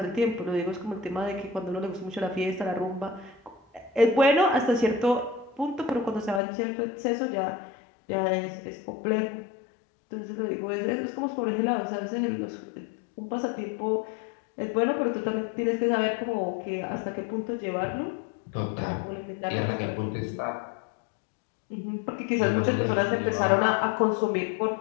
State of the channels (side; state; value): right; drops out; at 6.4 s